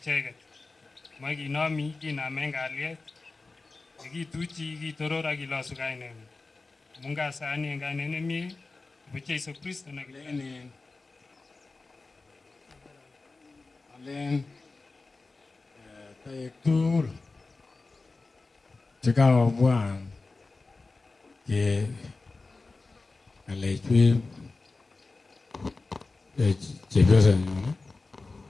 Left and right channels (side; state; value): right; quieter; 3.6 dB